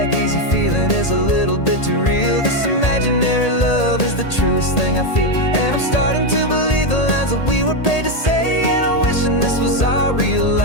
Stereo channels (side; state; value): right; late; 1.8 ms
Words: easy feeling is a little bit too real. This imaginary love is the truest thing I feel, and I'm starting to believe the lines that we were paid to say. And I'm wishing this was our real